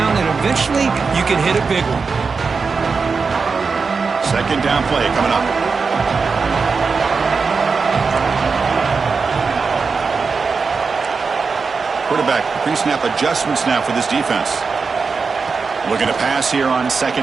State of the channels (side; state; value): left; quieter; 4.9 dB